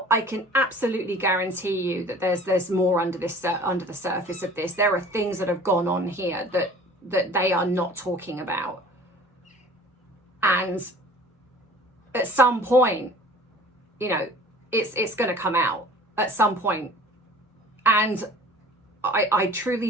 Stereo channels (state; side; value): normal; both; correlation 0.46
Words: I can absolutely guarantee you that there's more under the surface of this. There are things that have gone on here that they are not talking about. And at some point, it's going to come out at some point. And I